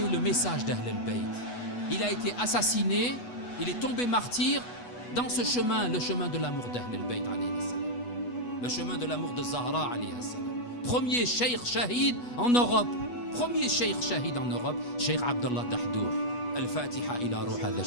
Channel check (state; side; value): late; right; 8.2 ms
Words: le message d'Ahl al-Bayt. Il a été assassiné, il est tombé martyr dans ce chemin, le chemin de l'amour d'Ahl al-Bayt, le chemin de l'amour de Zahra. Premier cheikh shahid en Europe. Premier cheikh shahid en Europe, Cheikh Abdallah Dahdour. الفاتحة إلى روح هذا